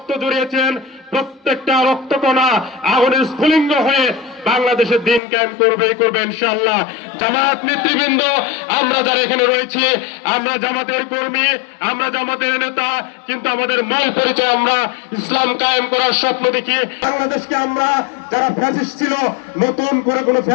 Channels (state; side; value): drops out; right; at 5.2 s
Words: জড়িয়েছেন, প্রত্যেকটা রক্তকণা আগুনের স্ফুলিঙ্গ হয়ে বাংলাদেশের দিন কায়েম করবে ইনশাআল্লাহ। জামাত নেতৃবৃন্দ, আমরা যারা এখানে রয়েছি, আমরা জামাতের কর্মী, আমরা জামাতের নেতা, কিন্তু আমাদের মূল পরিচয় আমরা ইসলাম কায়েম করার স্বপ্ন দেখি। বাংলাদেশকে আমরা, যারা ফ্যাসিস্ট ছিল, নতুন করে কোনো